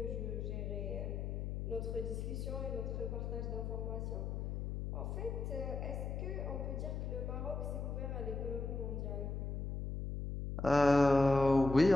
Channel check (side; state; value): left; noise; hum, 4 dB below the sound